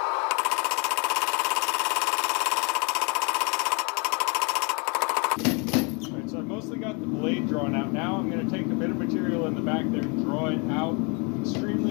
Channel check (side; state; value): right; quieter; 32.3 dB